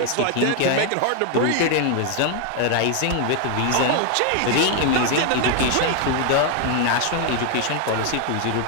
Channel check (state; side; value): different; both; correlation 0.00